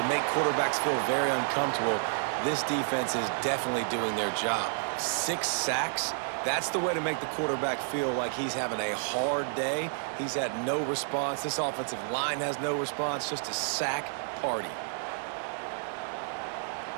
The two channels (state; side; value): silent; left; digital silence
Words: make quarterbacks feel very uncomfortable, this defense is definitely doing their job. 6 sacks, that's the way to make the quarterback feel like he's having a hard day. He's had no response. This offensive line has no response, just a sack party.